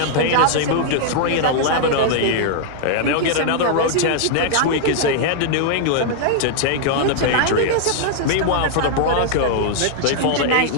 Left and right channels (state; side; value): different; both; correlation -0.01